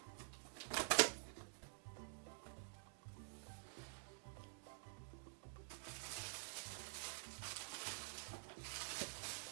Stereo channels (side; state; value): left; silent; digital silence